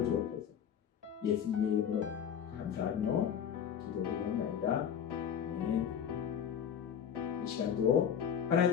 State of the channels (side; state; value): right; quieter; 8.4 dB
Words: 주옵소서. 예수님의 이름으로 감사하며 기도드리옵나이다. 아멘. 이 시간도